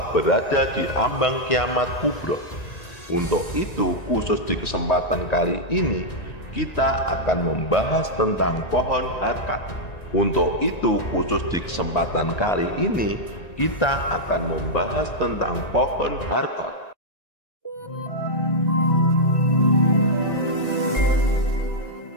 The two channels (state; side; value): late; right; 1.9 ms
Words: berada di ambang kiamat kubra. Untuk itu, khusus di kesempatan kali ini, kita akan membahas tentang pohon harkat. Untuk itu, khusus di kesempatan kali ini, kita akan membahas tentang pohon harkat.